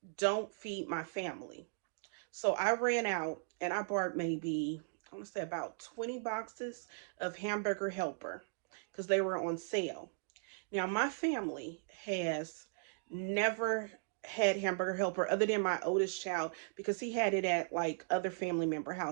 don't feed my family. So I ran out and I bought maybe, I want to say about 20 boxes of hamburger helper because they were on sale. Now, my family has never had hamburger helper other than my oldest child because he had it at like other family member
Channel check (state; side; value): silent; left; digital silence